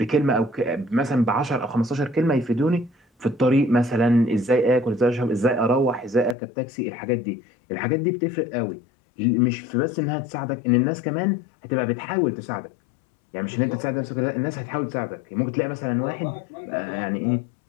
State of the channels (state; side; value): drops out; right; at 6.4 s